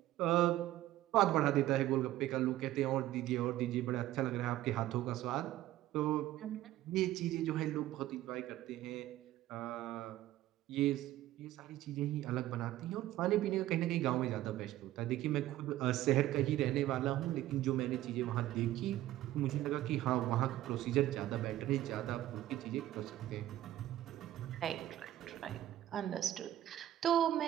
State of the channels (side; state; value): left; quieter; 14.3 dB